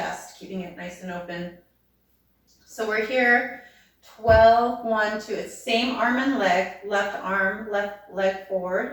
keeping it nice and open. So we're here, 12, 1, 2, it's same arm and leg, left arm, left leg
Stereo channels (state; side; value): identical; both; correlation 1.00